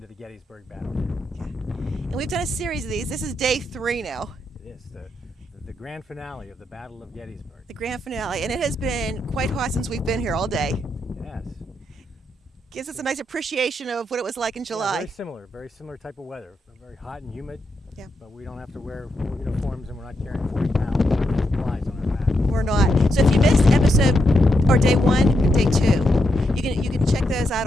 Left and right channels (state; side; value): normal; both; correlation 0.82